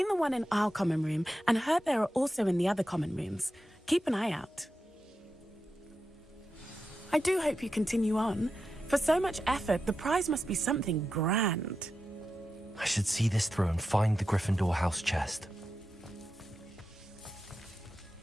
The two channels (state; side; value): normal; both; correlation 0.89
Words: the one in our common room and heard there are also in the other common rooms. Keep an eye out. I do hope you continue on. For so much effort, the prize must be something grand. I should see this through and find the Gryffindor house chest.